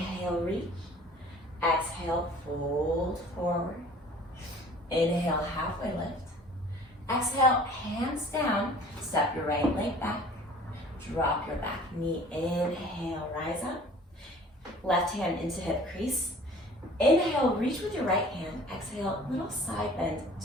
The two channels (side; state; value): both; normal; correlation 0.48